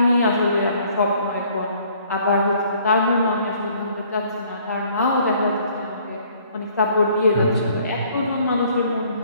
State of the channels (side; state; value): both; inverted; correlation -0.60